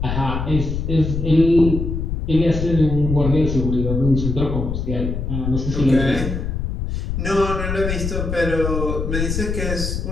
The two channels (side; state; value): left; noise; rumble, 3 dB below the sound